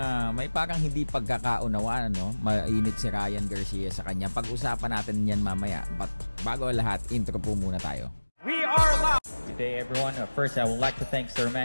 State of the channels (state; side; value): inverted; both; correlation -1.00